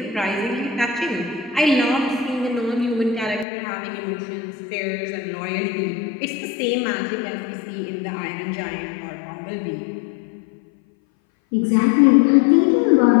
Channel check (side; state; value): right; drops out; at 3.5 s